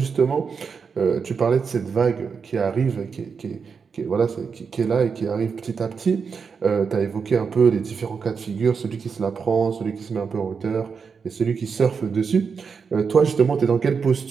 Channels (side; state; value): left; quieter; 5.8 dB